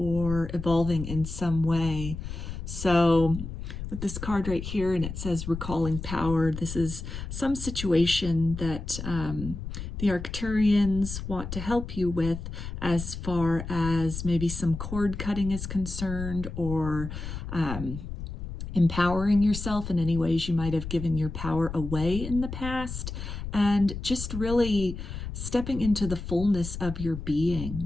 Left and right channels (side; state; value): left; noise; rumble, 7 dB below the sound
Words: evolving in some way. So with this card right here, and it says recalling power, this is some situation that the Arcturians want to help you with as far as maybe some cord cutting is concerned, or empowering yourself in any ways you might have given your power away in the past, and just really stepping into the fullness of your